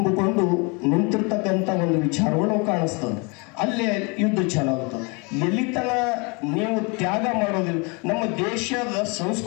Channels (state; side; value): quieter; right; 30.9 dB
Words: ನಿಂತಿರ್ತಕ್ಕಂಥ ಒಂದು ವಿಚಾರಗಳು ಕಾಣಿಸ್ತದೆ. ಅಲ್ಲೇ ಯುದ್ಧ ಚಾಲಾಗುತ್ತದೆ. ಎಲ್ಲಿತನ ನೀವು ತ್ಯಾಗ ಮಾಡೋದಿಲ್ಲ. ನಮ್ಮ ದೇಶದ